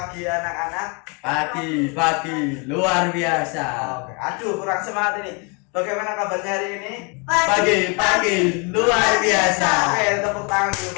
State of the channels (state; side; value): quieter; right; 33.2 dB